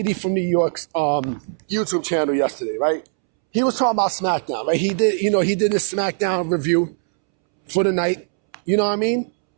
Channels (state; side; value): silent; left; 65 dB below the other